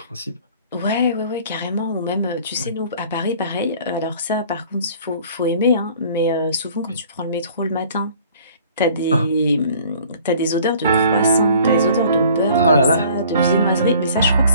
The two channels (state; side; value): inverted; both; correlation -0.52